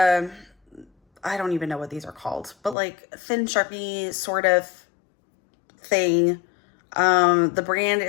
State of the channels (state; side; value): drops out; right; at 2.8 s